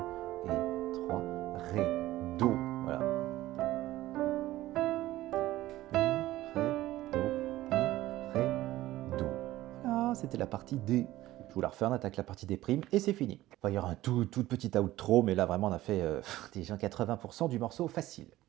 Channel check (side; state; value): left; quieter; 16.0 dB